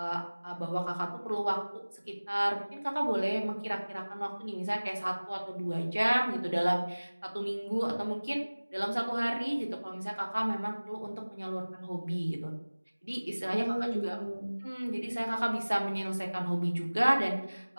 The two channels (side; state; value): both; inverted; correlation -1.00